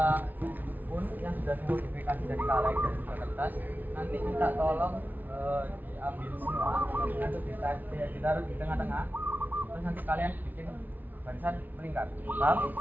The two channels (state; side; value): late; left; 0.083 ms